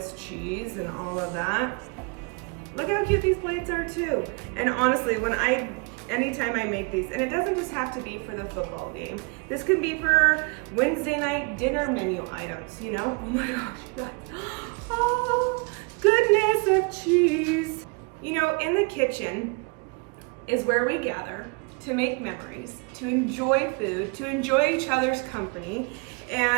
cheese and all of that. Look how cute these plates are too. And honestly, anytime I make these, and it doesn't just have to be for the football game. This can be for Wednesday night dinner menu items, you know? Oh my gosh, guys. Oh, goodness of cheese. You know, in the kitchen is where we gather to make memories, to enjoy food, to enjoy each other's company.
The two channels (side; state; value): left; quieter; 31.2 dB